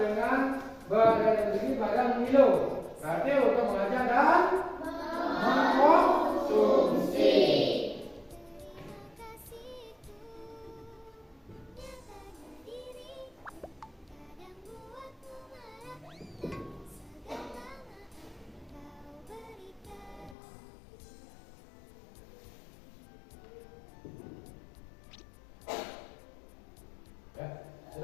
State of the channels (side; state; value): right; drops out; at 20.4 s